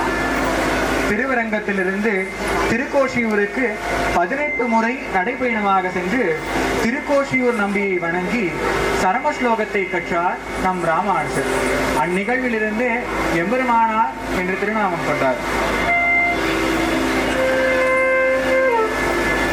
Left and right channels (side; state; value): both; identical; correlation 1.00